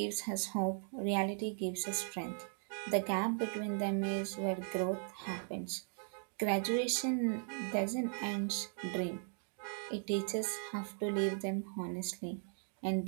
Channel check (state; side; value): silent; left; 52 dB below the other